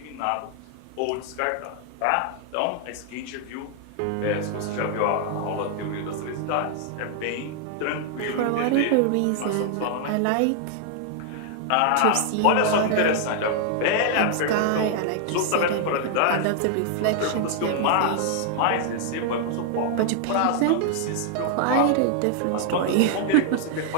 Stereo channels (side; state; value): both; different; correlation 0.00